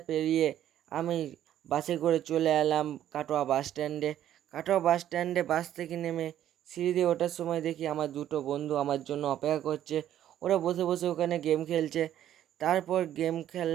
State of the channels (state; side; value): quieter; left; 11.5 dB